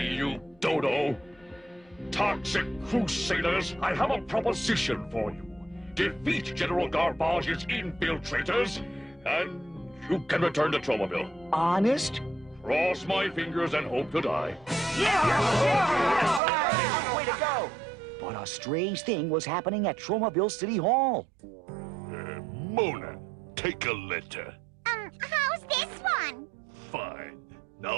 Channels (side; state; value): left; drops out; at 16.4 s